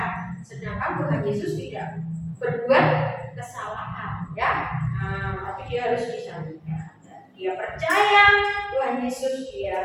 Sedangkan Tuhan Yesus tidak berbuat kesalahan, ya. Tapi dia harus disalibkan. Dia percaya Tuhan Yesus,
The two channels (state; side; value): identical; both; correlation 1.00